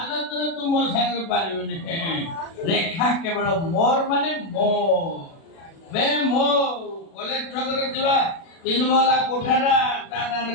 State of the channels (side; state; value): right; late; 36 ms